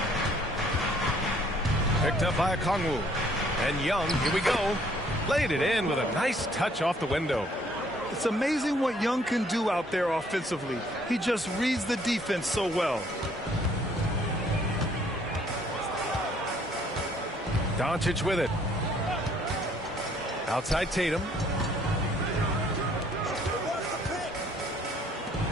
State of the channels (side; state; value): both; normal; correlation 0.62